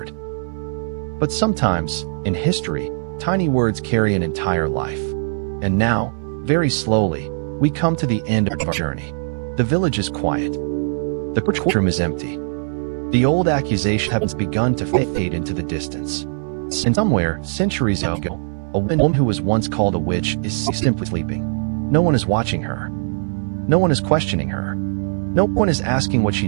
But sometimes, in history, tiny words carry an entire life. And now, very slowly, we come to the end of our journey. The village is quiet. The courtroom is empty. The old accusation has begun to fade into the distance. And somewhere, centuries ago, a woman who was once called a witch is simply sleeping. No one is watching her. No one is questioning her. No one is asking what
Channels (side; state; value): left; silent; digital silence